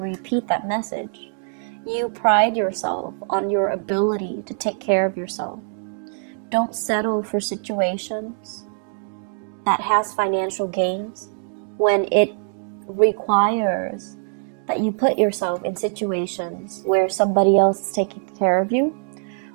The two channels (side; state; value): left; silent; 60 dB below the other